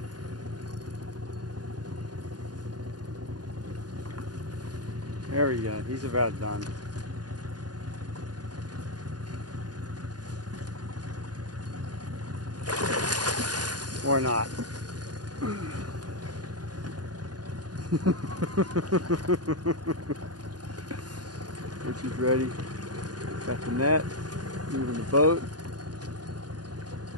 There we go. He's about done. Or not. Richie's ready. Got the net. Moving the boat.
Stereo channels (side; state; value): left; late; 0.69 ms